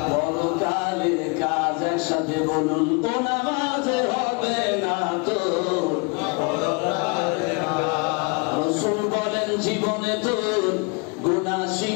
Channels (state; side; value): quieter; right; 31.3 dB